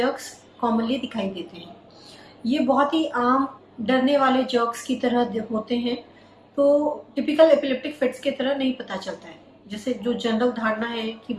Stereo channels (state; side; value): identical; both; correlation 1.00